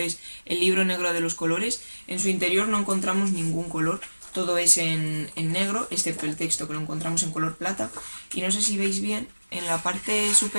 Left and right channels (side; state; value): both; inverted; correlation -1.00